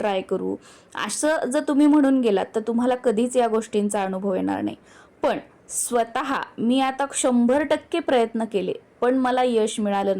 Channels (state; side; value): identical; both; correlation 1.00